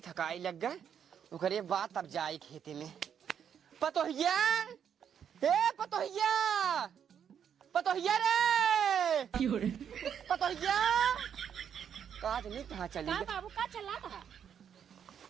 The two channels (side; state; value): left; quieter; 8.3 dB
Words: थकाई लग गए ओकरे बाद तब जाई खेते में। पतोहिया हे पतोहिया पतोहिया रे पतोहिया काज नहीं कहाँ चली का बाबू का चला था